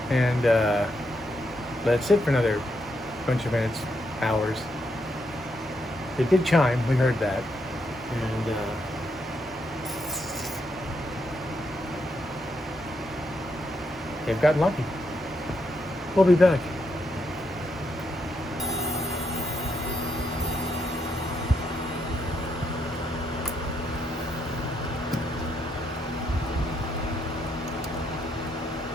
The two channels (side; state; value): both; normal; correlation 0.79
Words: And let it sit for another bunch of minutes, hours. It did chime, we heard that. And they've gotten lucky. We'll be back.